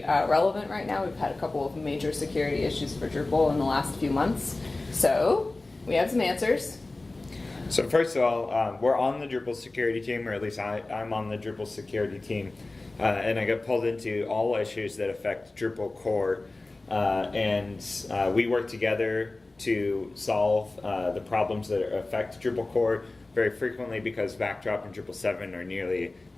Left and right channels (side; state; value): right; quieter; 3.1 dB